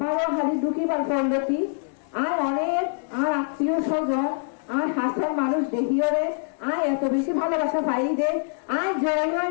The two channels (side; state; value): right; silent; digital silence